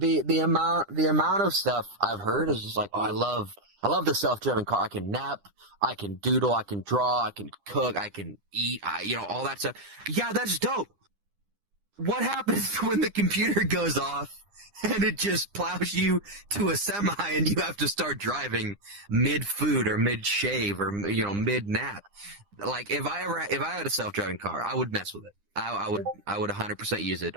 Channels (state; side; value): late; left; 9.9 ms